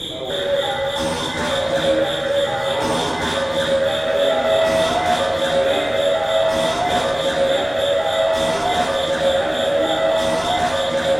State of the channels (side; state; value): left; noise; rumble, 24 dB below the sound